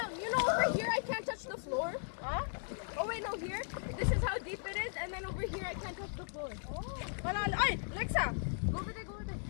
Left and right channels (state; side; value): silent; right; 53 dB below the other